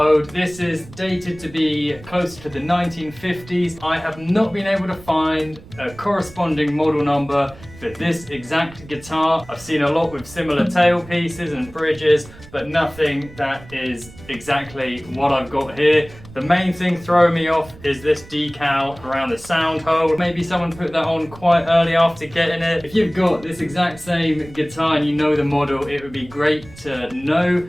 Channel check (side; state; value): right; noise; rumble, 19 dB below the sound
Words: This is dated to be closer to the 1950s. I have not been able to find a corresponding model number for this exact guitar. I've seen a lot with similar tailpieces and bridges, but nothing that is exactly what I've got here. The main thing throwing me off is this decal around the sound hole. Maybe someone put that on quite early after getting it. If you've got this exact same guitar and you know the model, it would be great to know,